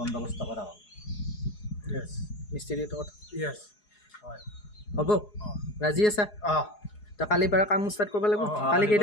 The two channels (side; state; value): right; late; 4.8 ms